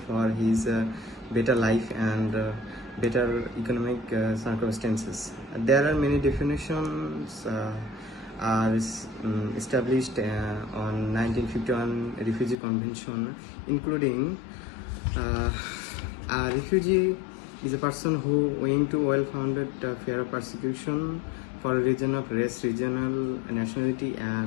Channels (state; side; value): drops out; right; at 12.6 s